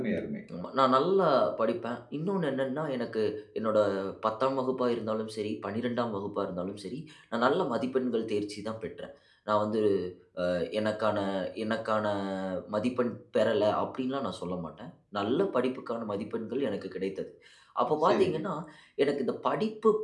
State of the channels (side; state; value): both; identical; correlation 1.00